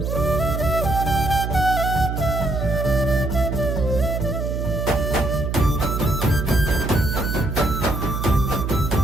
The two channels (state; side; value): noise; right; hum, 2 dB below the sound